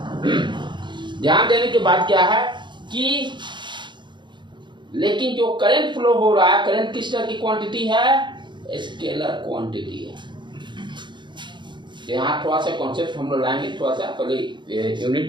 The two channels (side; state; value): left; late; 0.23 ms